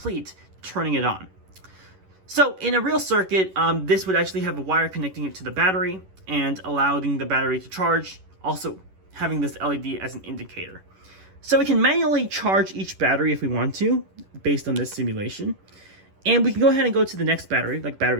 turning it on. So in a real circuit, this would actually have a wire connecting it to the battery and allowing the battery to charge, also having this LED as an indicator. So we can manually charge each battery if we want to, based on this simulation. And we can go ahead and go to the next battery, like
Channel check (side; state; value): left; late; 11 ms